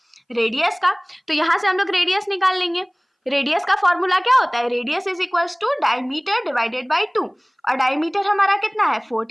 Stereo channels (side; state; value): both; identical; correlation 1.00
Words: रेडियस का। तो यहां से हम लोग रेडियस निकाल लेंगे। रेडियस का फॉर्मूला क्या होता है, radius is equals to diameter divided by 2। और डायमीटर हमारा कितना है